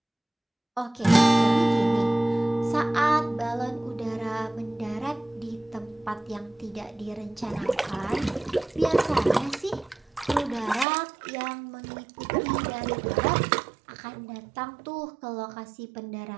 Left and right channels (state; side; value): drops out; left; at 10.9 s